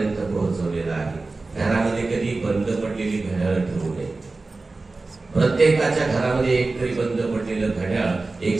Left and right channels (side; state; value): left; quieter; 3.5 dB